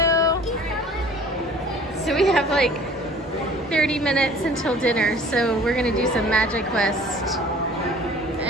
So we have like 30 minutes until dinner, so we're gonna do some Magic West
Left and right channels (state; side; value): normal; both; correlation 0.49